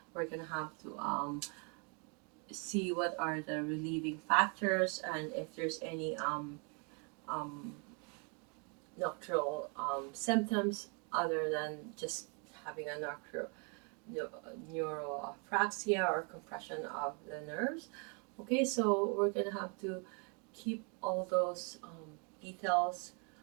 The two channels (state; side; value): quieter; left; 36.0 dB